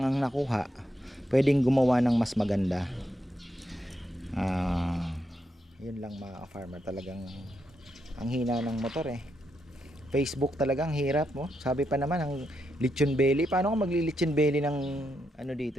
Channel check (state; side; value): normal; both; correlation 0.82